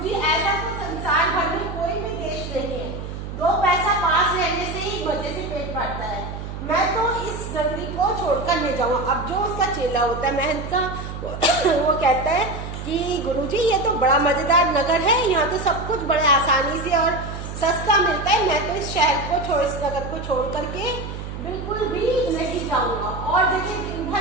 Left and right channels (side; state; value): right; noise; hum, 8 dB below the sound